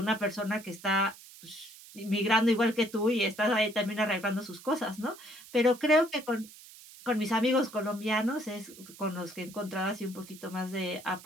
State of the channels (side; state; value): right; noise; hiss, 19 dB below the sound